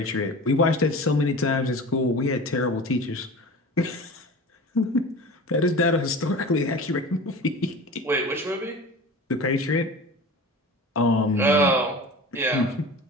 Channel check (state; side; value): normal; both; correlation 0.35